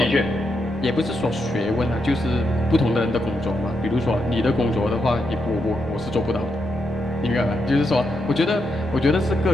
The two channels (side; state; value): both; normal; correlation 0.82